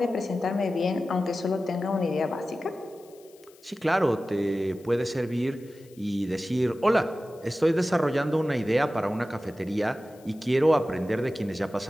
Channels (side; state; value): left; noise; hiss, 28 dB below the sound